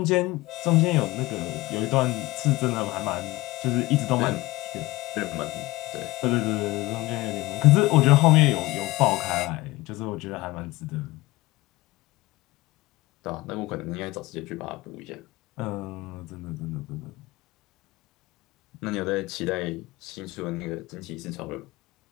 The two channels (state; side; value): quieter; right; 20.2 dB